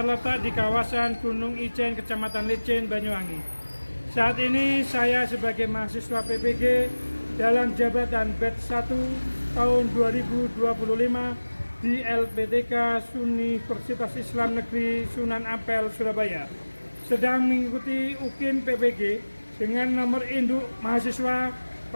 di kawasan Gunung Ijen, Kecamatan Licin, Banyuwangi. Saat ini saya sebagai mahasiswa PPG dalam jabatan batch 1 tahun 2025 di LPTK Universitas Islam Negeri Sunan Ampel, Surabaya, sedang mengikuti UKIM PPG dengan nomor induk mahasiswa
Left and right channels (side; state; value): both; inverted; correlation -1.00